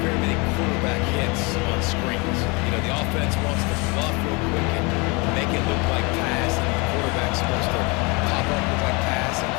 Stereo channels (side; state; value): right; quieter; 28.4 dB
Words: many quarterback hits on screens. You know, the offense wants to fluff real quick and make it look like pass, and the quarterback's supposed to pop up, look like pass, and